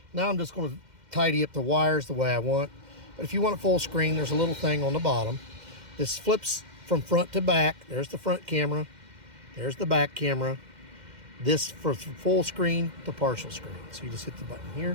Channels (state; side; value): late; left; 2.1 ms